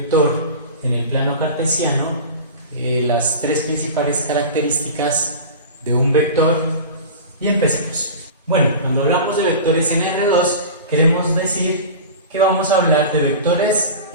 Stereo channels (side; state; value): both; inverted; correlation -0.32